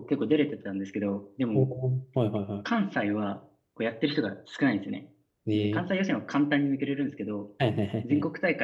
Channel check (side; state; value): both; identical; correlation 1.00